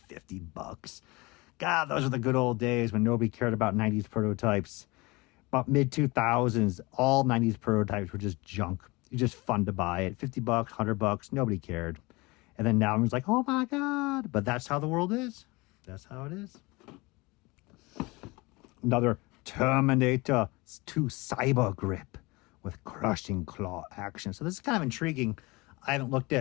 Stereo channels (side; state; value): right; quieter; 24.1 dB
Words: $50. God, those are the good old days when nobody cared about 90s prototypes. About mid-2000s, all 90s prototypes were just junk. It's just fun to buy it. $50, $100, nobody cared. And then now everyone's like, oh my God. But that's how the world is. That's how it is. Another Terminator 2 Cyber Grip with crushing claw action. So this is kind of intriguing. I haven't looked